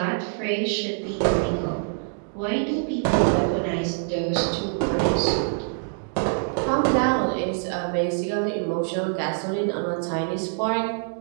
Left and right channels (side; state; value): left; silent; 62 dB below the other